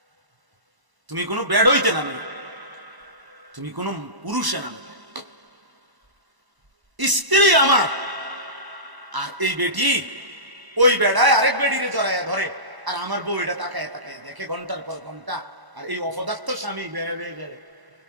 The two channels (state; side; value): late; left; 1.0 ms